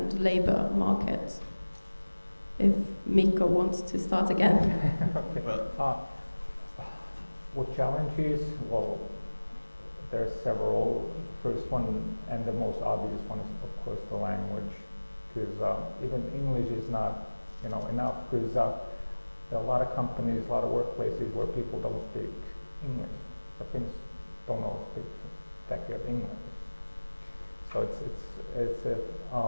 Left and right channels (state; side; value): inverted; both; correlation -1.00